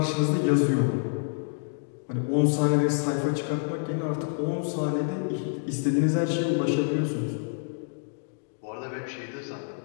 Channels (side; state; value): right; silent; digital silence